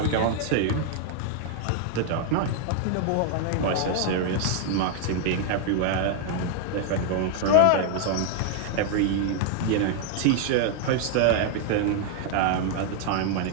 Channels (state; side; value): different; both; correlation 0.00